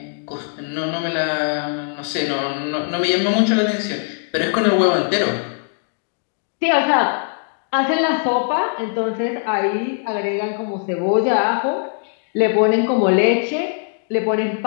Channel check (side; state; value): right; silent; digital silence